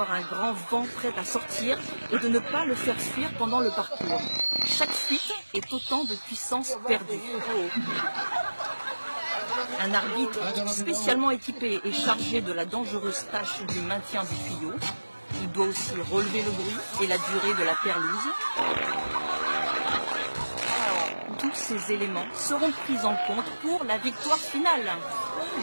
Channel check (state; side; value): inverted; both; correlation -1.00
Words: un grand vent prêt à sortir et de ne pas le faire fuir pendant le parcours. Chaque fuite est autant de puissance perdue. Un arbitre spécialement équipé est chargé de la dangereuse tâche du maintien du tuyau. Il doit aussi relever le bruit et la durée de la perlouse. Tous ces éléments seront pris en compte pour la victoire finale.